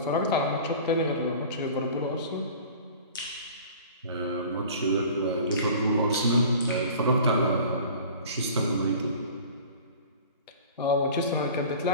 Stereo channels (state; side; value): inverted; both; correlation -0.42